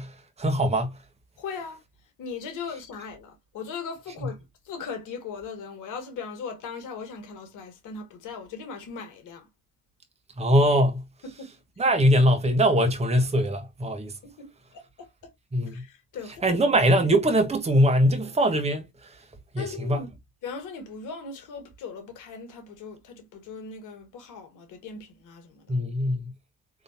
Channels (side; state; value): both; normal; correlation 0.54